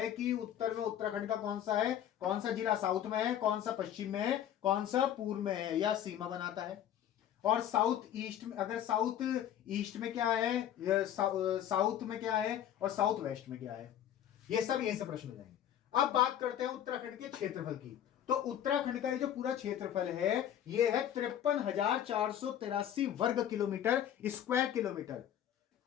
कि उत्तर में उत्तराखंड का कौन सा है, कौन सा जिला साउथ में है, कौन सा पश्चिम में है, कौन सा पूर्व में है, या सीमा बनाता है। और साउथ ईस्ट में, अगर साउथ ईस्ट में क्या है, साउथ में क्या है और साउथ वेस्ट में क्या है, ये सब यहीं से प्रश्न हो जाएंगे। अब बात करते हैं उत्तराखंड के क्षेत्रफल की। तो उत्तराखंड का ये जो पूरा क्षेत्रफल है ये है 53,483 वर्ग kilometre, square kilometre,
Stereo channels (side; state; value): right; quieter; 10.6 dB